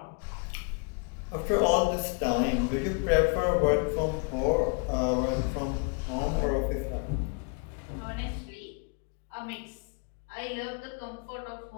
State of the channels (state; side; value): quieter; right; 35.3 dB